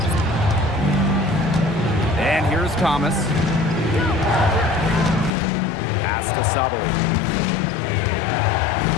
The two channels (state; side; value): drops out; right; at 5.3 s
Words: And here's Thomas. Pass to Sabali.